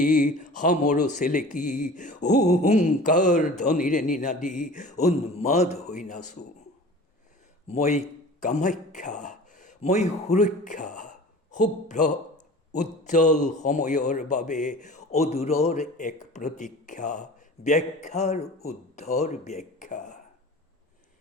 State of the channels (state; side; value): normal; both; correlation 0.40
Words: সামৰ চেলেকি, হুংকাৰ ধ্বনিৰে নিনাদি উন্মাদ হৈ নাচোঁ। মই কামাখ্যা, মই সুৰক্ষা, শুভ্ৰ উজ্জ্বল সময়ৰ বাবে অদূৰৰ এক প্ৰতীক্ষা, ব্যাখ্যাৰ উদ্ধৰ ব্যাখ্যা।